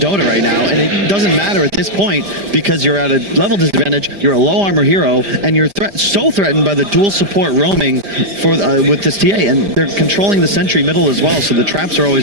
right now, and it doesn't matter at this point because you're at a level disadvantage, you're a low armor hero, and you're so threatened by the dual support roaming for with this TA, and they're controlling the sentry middle as well, so the traps are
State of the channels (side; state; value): left; late; 5.0 ms